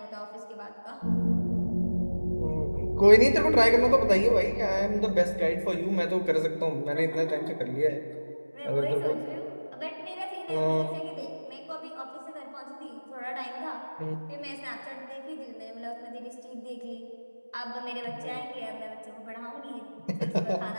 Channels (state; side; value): inverted; both; correlation -1.00